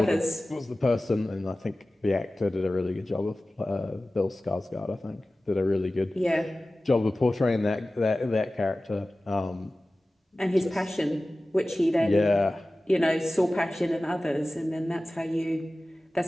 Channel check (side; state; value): both; normal; correlation 0.97